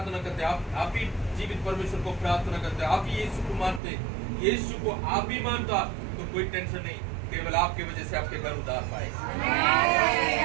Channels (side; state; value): left; drops out; at 3.8 s